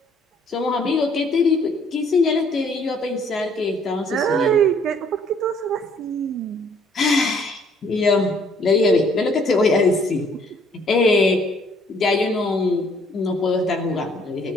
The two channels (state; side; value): normal; both; correlation 0.62